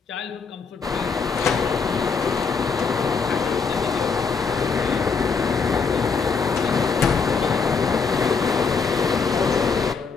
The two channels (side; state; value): right; quieter; 5.2 dB